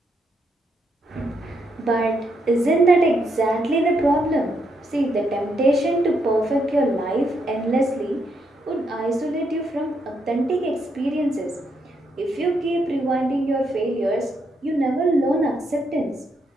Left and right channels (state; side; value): normal; both; correlation 0.78